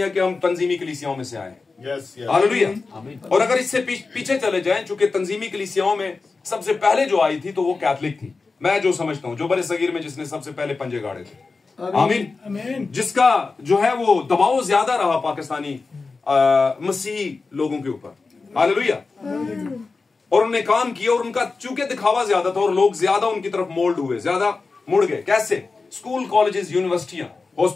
कि हम तंजीमी कलीसियाओं में से आए हैं। हालेलुया। और अगर इससे पीछे चले जाएं, चूंकि तंजीमी कलीसियाओं में सबसे पहले जो आई थी तो वो कैथलिक थी। मैं जो समझता हूं, जो बड़े सगीर में जिसने सबसे पहले पंजे गाड़े थे। आमीन। जिसका जो है वो दबाव ज्यादा रहा पाकिस्तानी मसीही लोगों के ऊपर। हालेलुया। और उन्होंने काम किया, और उनका चूंकि दिखावा ज्यादा था और लोग ज्यादा उनकी तरफ मोल्ड हुए, ज्यादा मुड़ गए। कैसे? स्कूल, कॉलेजेस, यूनिवर्सिटियां,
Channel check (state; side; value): quieter; right; 4.1 dB